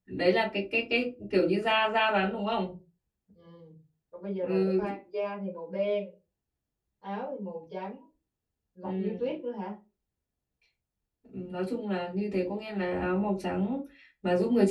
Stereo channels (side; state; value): both; identical; correlation 1.00